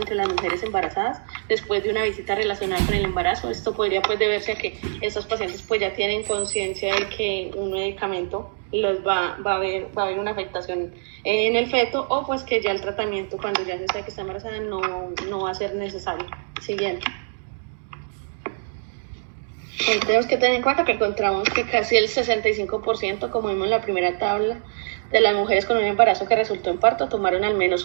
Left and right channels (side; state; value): left; silent; digital silence